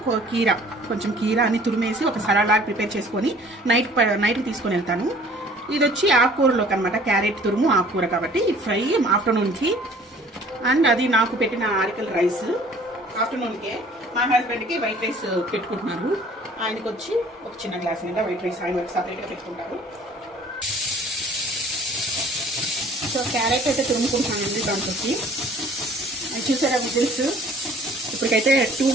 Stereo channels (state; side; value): normal; both; correlation 0.52